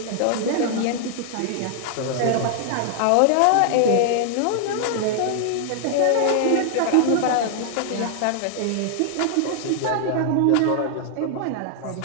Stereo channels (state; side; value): different; both; correlation 0.00